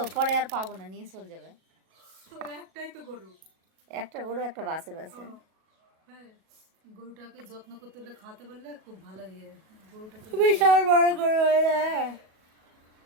পরে আর পাবো না, নিয়ে চলে যাবে। তো একটাই তো গরু, একটা গরু একটা বাছুর আছে। হ্যাঁ গরুটাকে যত্ন করতে হলে খাওয়াতে পারলে খুব ভালো ইয়ে। গরুটাকে বিশাল বড় গরু হয়ে যায়।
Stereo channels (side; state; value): left; late; 37 ms